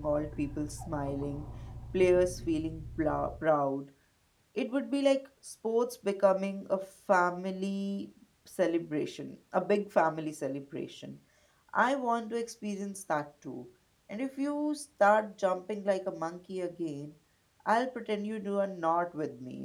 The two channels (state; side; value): identical; both; correlation 1.00